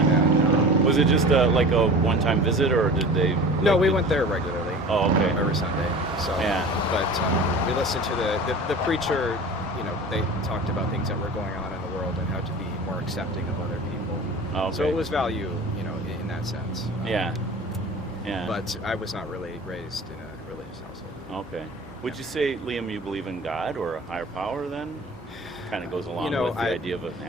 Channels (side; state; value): both; normal; correlation 0.38